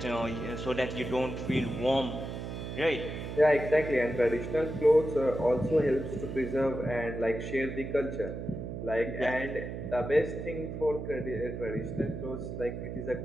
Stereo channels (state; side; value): noise; right; hum, 6 dB below the sound